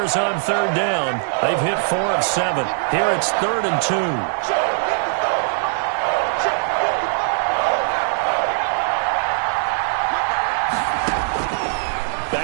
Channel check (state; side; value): silent; left; digital silence